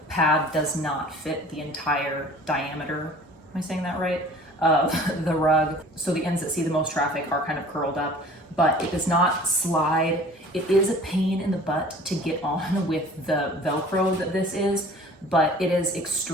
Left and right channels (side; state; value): both; normal; correlation 0.47